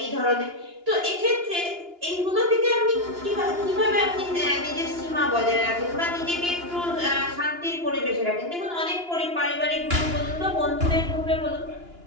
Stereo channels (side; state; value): left; late; 2.9 ms